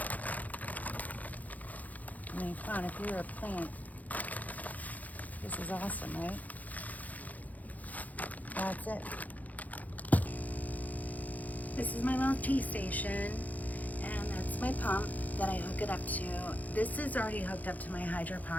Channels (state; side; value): late; right; 0.079 ms